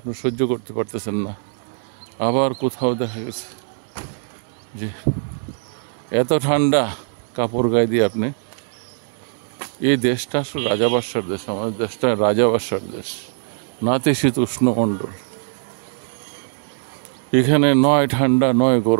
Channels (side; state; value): left; silent; 65 dB below the other